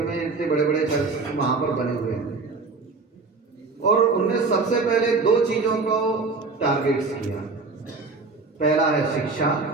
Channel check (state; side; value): quieter; left; 4.0 dB